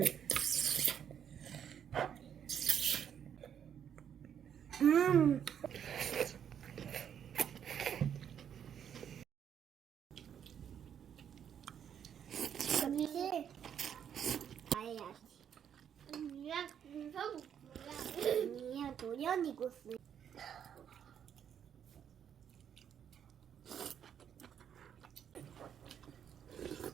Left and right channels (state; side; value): quieter; left; 8.7 dB